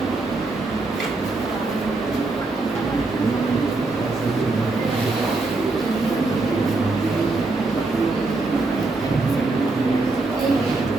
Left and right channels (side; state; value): left; quieter; 3.4 dB